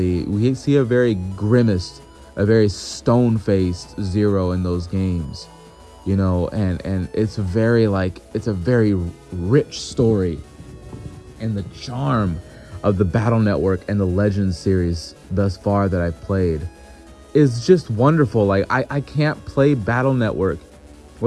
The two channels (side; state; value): both; identical; correlation 1.00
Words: we see a very grimaced, a very stone-faced Zero in those games, you know, and it's a very rich story. And the charm of the Battle Network and the Legends series thus far that I've played is just wonderful. Like, I can't play Battle Network